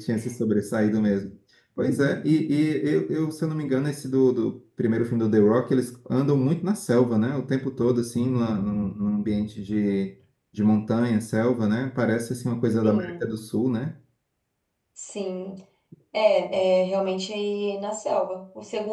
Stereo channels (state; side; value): identical; both; correlation 1.00